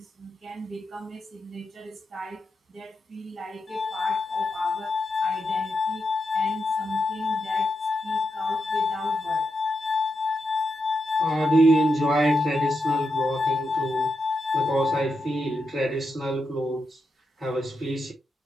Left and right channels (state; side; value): normal; both; correlation 0.85